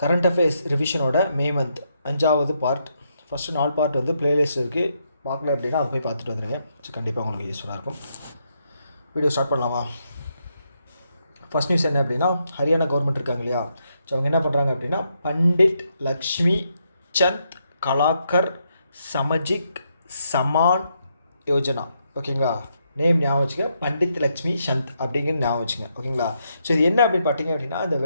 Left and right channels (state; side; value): inverted; both; correlation -0.79